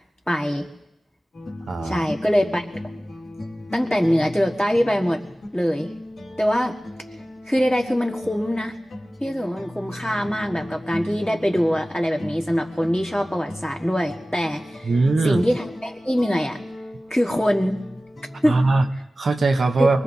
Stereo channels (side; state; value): both; normal; correlation 0.96